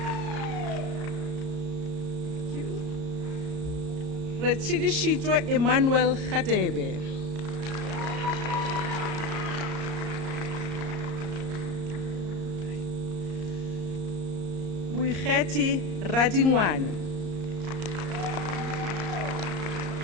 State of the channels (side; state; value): left; late; 34 ms